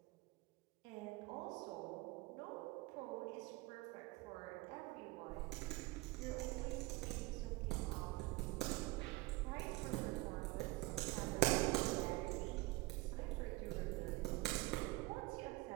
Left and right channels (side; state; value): left; quieter; 21.0 dB